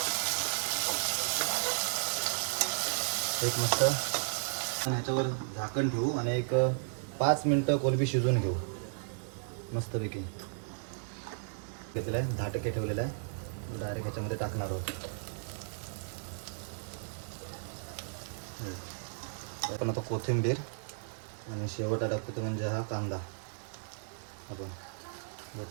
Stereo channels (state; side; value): silent; left; 55 dB below the other